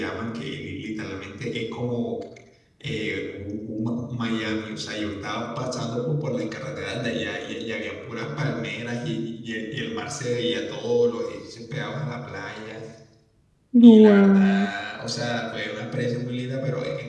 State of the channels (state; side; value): identical; both; correlation 1.00